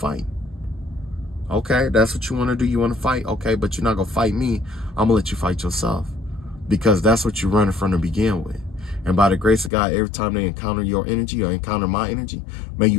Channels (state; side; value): drops out; right; at 9.7 s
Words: Okay, that's what you want to do. You want to fight? Okay, but you're not going to fight me. I'm going to let you fight yourself. Because that's what you're running from to begin with. And by the grace of God, every time they encounter your energy or encounter my energy, may